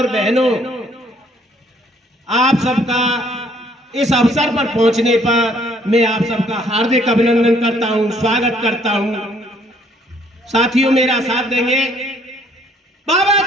बहनों, आप सबका इस अवसर पर पहुंचने पर मैं आप सबका हार्दिक अभिनंदन करता हूं, स्वागत करता हूं। साथियों मेरा साथ देंगे। बाबा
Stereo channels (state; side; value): normal; both; correlation 0.63